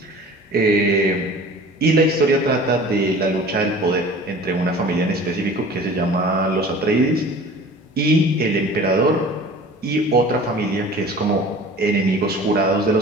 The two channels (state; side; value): normal; both; correlation 0.43